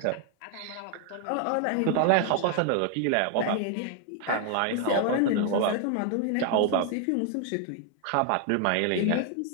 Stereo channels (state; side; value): different; both; correlation 0.00